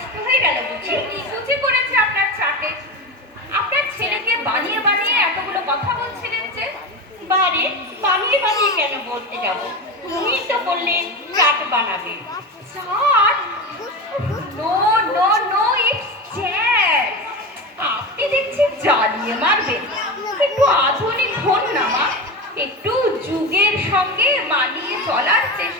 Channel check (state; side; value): normal; both; correlation 0.23